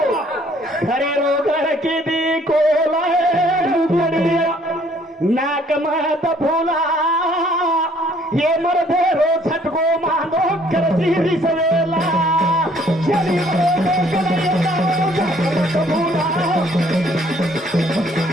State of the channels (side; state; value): both; normal; correlation 0.61